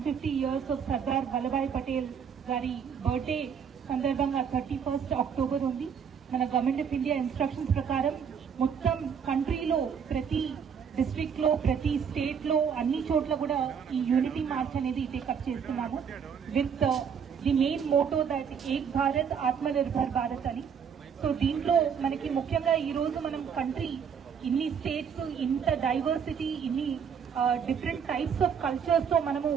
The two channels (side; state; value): left; quieter; 7.1 dB